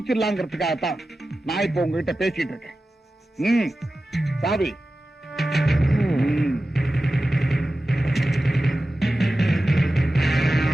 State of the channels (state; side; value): normal; both; correlation 0.94